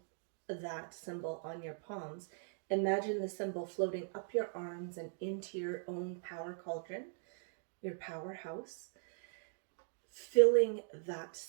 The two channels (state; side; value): silent; left; digital silence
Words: that symbol on your palms, imagine the symbol floating up your arms and into your own power cauldron, your powerhouse, filling that